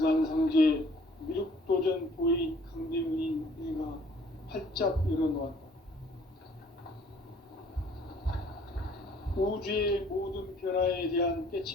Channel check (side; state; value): both; normal; correlation 0.58